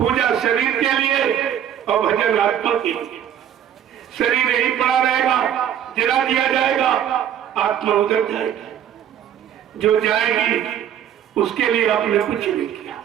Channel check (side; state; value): left; quieter; 9.8 dB